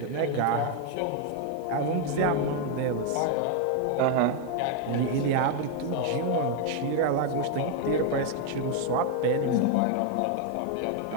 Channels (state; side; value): different; both; correlation 0.00